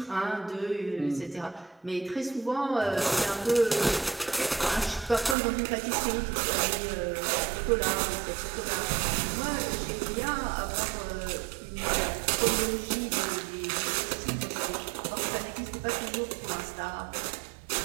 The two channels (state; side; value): drops out; left; at 5.4 s